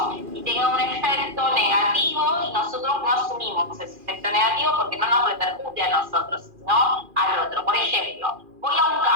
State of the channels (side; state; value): left; late; 2.4 ms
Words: y tenga un efecto negativo y nosotros no asumimos ese efecto negativo porque no nos repercute a nosotros, sino al otro. Por ejemplo, voy a un